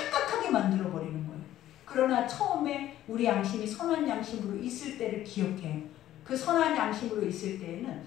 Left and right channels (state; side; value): quieter; right; 13.0 dB